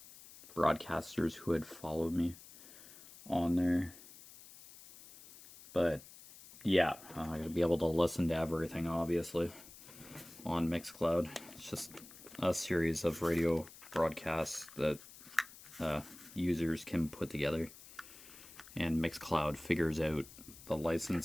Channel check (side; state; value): left; noise; hiss, 18 dB below the sound